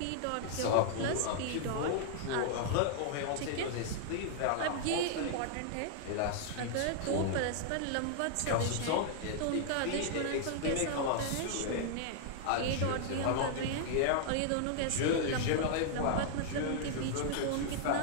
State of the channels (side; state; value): both; different; correlation -0.01